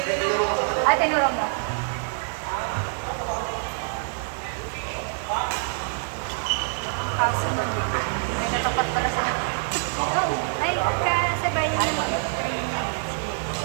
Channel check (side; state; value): left; silent; digital silence